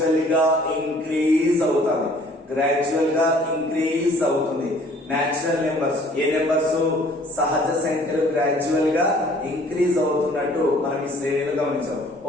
గా ఇంక్రీజ్ అవుతుంది. న్యాచురల్ నెంబర్స్, ఏ నెంబర్స్? సహజ సంఖ్యలు గ్రాడ్యువల్ గా ఇంక్రీజ్ అవుతున్నట్టు మనం ఈ శ్రేణిలో గమనించాం.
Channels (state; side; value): normal; both; correlation 0.55